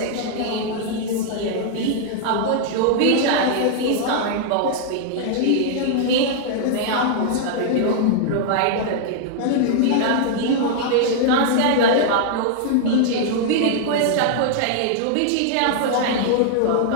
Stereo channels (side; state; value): both; different; correlation -0.01